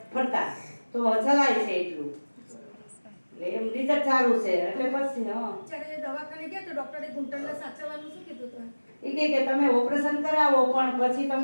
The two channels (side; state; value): both; inverted; correlation -1.00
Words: ફરતા તો ચલાય છે એટલું. એટલે એમ રિઝલ્ટ સારું છે. એટલે પછી જ્યારે દવાખાને ગયા તો ડોક્ટરે ઘૂંટણને સાચવવાનું શું કીધું હતું? એ કે તમે ઓપરેશન કરાવો, પણ પછી